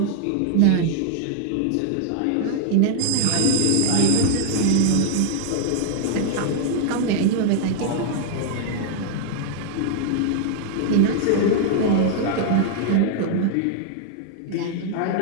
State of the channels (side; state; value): both; different; correlation 0.00